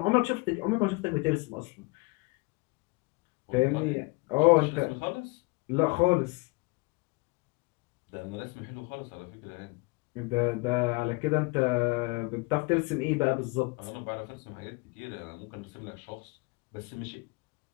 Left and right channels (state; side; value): quieter; right; 27.0 dB